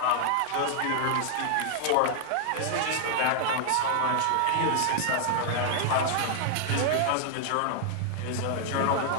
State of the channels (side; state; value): both; different; correlation -0.01